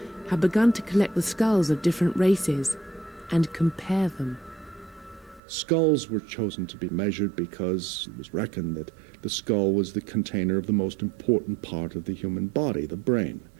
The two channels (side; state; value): left; drops out; at 5.4 s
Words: had begun to collect the skulls of different races and compare them. Skulls were chosen to be measured because it was reckoned that the skull was the container of the most important part of the human body, the brain.